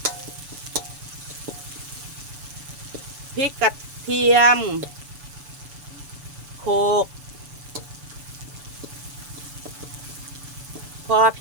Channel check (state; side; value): late; left; 6.9 ms